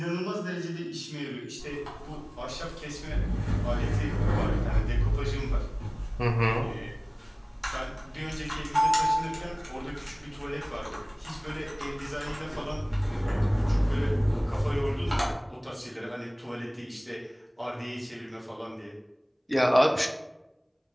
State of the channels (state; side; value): identical; both; correlation 1.00